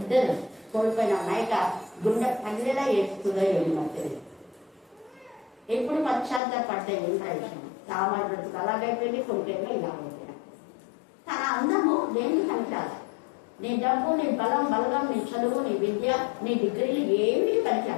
కోల్పోయిన మైకా గుండె పల్లెలా ఏడుస్తుందో ఏమో తెలియదు. ఎప్పుడు పశ్చాత్తాపడితే ఏం ప్రయోజనం, సామాన్య బ్రతుకు అలాగైపోయింది, కొడుకేమో ఇలా అయిపోయింది. తన అందము దేనికి పనికిరాదు. నీ డబ్బు, నీ బలం, బలగం, నీ చదువు, నీ విద్య, నీ డిగ్రీలు ఏమీ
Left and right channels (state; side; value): drops out; right; at 6.4 s